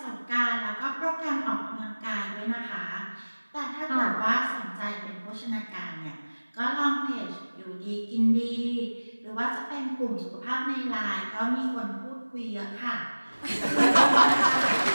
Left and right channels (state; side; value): inverted; both; correlation -1.00